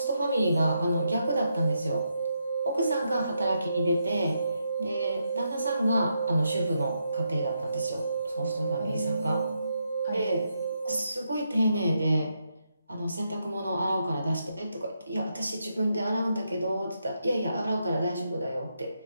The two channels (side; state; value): both; inverted; correlation -0.81